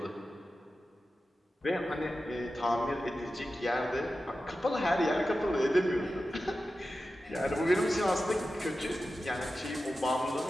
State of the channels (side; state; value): both; normal; correlation 0.93